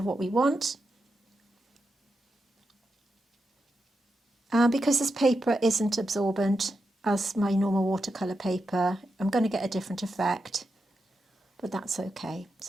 what we want. And because this paper isn't absorbent as my normal watercolour paper, I'm going to get a different effect, but that's okay.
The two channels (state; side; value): normal; both; correlation 0.87